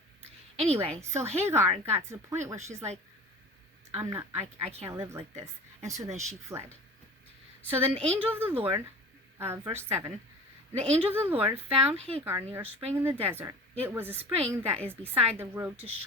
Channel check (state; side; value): normal; both; correlation 0.39